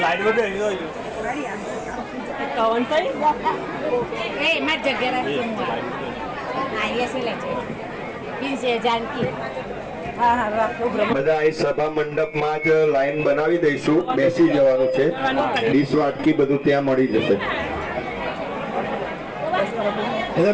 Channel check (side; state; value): both; identical; correlation 1.00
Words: कौन सा ए मैं जगह आइए से ले से जानकी हाँ हाँ રાખો બધા અહીં સભા મંડપમાં જ લાઈન બનાવી દઈશું. બેસી જવાનું છે. ડીશ વાટકી બધું ત્યાં મળી જશે.